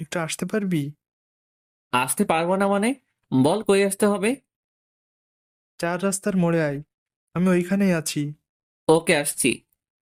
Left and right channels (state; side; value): identical; both; correlation 1.00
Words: আসতে পারবি? আসতে পারবো না মানে? বল, কই আসতে হবে? 4 রাস্তার মোড়ে আয়, আমি ওইখানেই আছি। ওকে, আসছি।